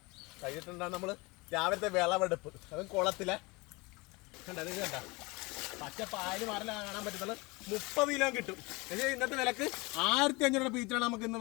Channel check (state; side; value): quieter; right; 25.3 dB